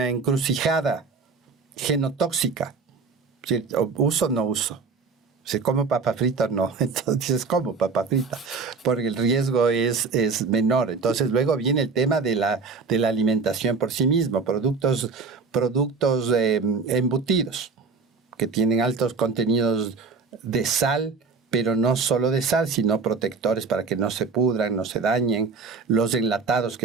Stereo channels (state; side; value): quieter; left; 4.7 dB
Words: encrucijada genotóxica. ¿Sí? ¿Uso o no uso? Si como papa frita, no. Entonces dices, como papa frita, porque el riesgo es menor. Entonces luego viene el tema de la alimentación por sí mismo, productos embutidos, que tienen altos contenidos de sal, pero no solo de sal, sino protectores para que no se pudran, no se dañen. Los enlatados